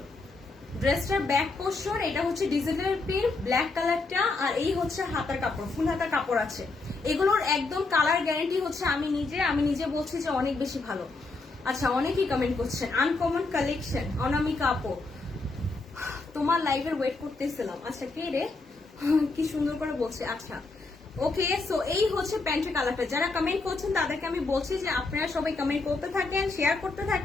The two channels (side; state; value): right; quieter; 3.6 dB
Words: ড্রেসটার ব্যাক পোর্শন, এটা হচ্ছে ডিজিটাল প্রিন্ট ব্ল্যাক কালারটা, আর এই হচ্ছে হাতার কাপড়, ফুল হাতা কাপড় আছে। এগুলোর একদম কালার গ্যারান্টি হচ্ছে আমি নিজে বলছি যে অনেক বেশি ভালো। আচ্ছা অনেকেই কমেন্ট করছেন আনকমন কালেকশন, অনামিকা আপু তোমার লাইভের ওয়েট করতেছিলাম। আচ্ছা কে রে, কি সুন্দর করে বলছে। আচ্ছা ওকে, সো এই হচ্ছে প্যান্টের কালারটা। যারা কমেন্ট করছেন তাদেরকে আমি বলছি যে আপনারা সবাই কমেন্ট করতে থাকেন, শেয়ার করতে